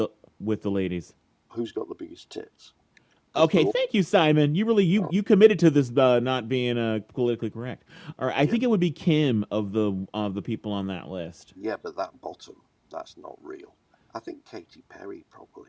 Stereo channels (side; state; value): both; identical; correlation 1.00